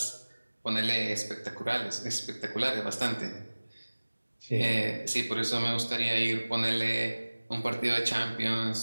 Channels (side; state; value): both; inverted; correlation -1.00